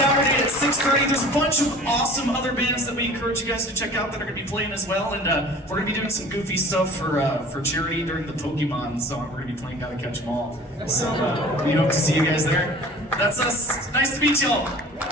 at 6:30. There's a bunch of awesome other bands that we encourage you guys to check out that are going to be playing as well, and we're going to be doing some goofy stuff for charity during the Pokemon song. We're going to be playing Gotta Catch 'Em All. So we hope to see you guys there. That's us. Nice to meet y'all.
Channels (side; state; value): both; normal; correlation 0.44